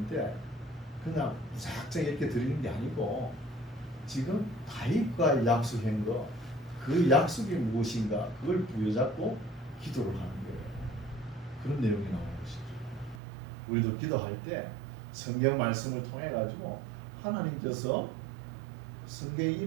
그냥 무작정 이렇게 드리는 게 아니고 지금 다윗과 약속한 거, 그 약속이 무엇인가 그걸 부여잡고 기도를 하는 거예요. 그런 내용이 나오는 것이죠. 우리도 기도할 때 성경 말씀을 통해 가지고 하나님께서 성경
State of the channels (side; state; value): left; drops out; at 13.2 s